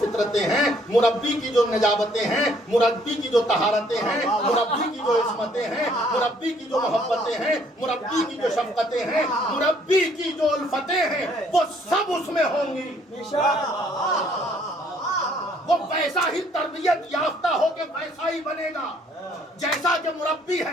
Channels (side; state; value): both; normal; correlation 0.63